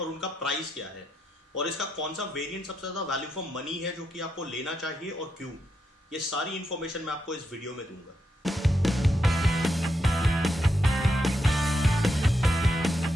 उनका प्राइस क्या है, और इसका कौन सा वेरिएंट सबसे ज़्यादा वैल्यू फॉर मनी है जो कि आपको लेना चाहिए और क्यों, ये सारी इन्फॉर्मेशन मैं आपको इस वीडियो में दूंगा।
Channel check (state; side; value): normal; both; correlation 0.82